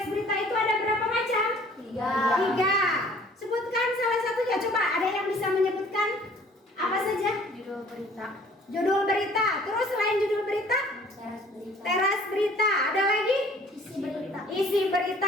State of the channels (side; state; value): both; normal; correlation 0.54